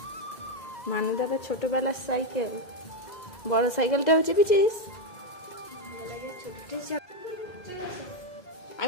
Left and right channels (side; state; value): right; late; 2.0 ms